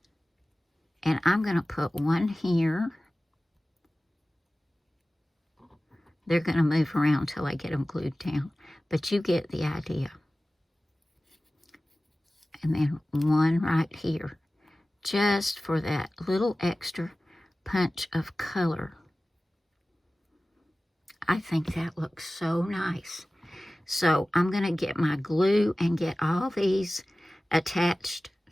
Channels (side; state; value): both; normal; correlation 0.97